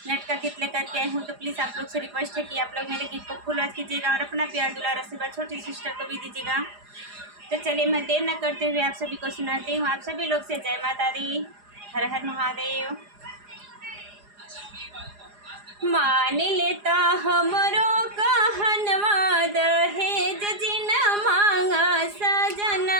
का गीत लेकर के आई हूँ। तो प्लीज़ आप लोग से रिक्वेस्ट है कि आप लोग मेरे गीत को फुल वॉच कीजिएगा और अपना प्यार दुलार आशीर्वाद छोटी सिस्टर को भी दीजिएगा। तो चलिए मैं देर न करते हुए आप सभी को सुनाती हूँ। आप सभी लोग से जय माता दी, हर हर महादेव। मान लेता हमरो कहनवा, दहेज जिन मांगा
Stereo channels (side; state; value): left; late; 4.9 ms